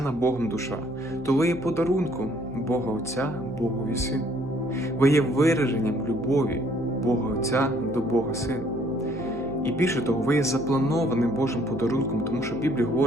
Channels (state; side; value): noise; left; hum, 19 dB below the sound